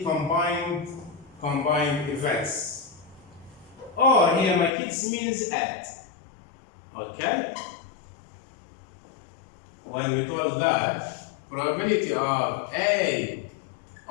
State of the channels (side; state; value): right; drops out; at 4.7 s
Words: combined events. Or here my kids means add. Okay? When we told that probability of A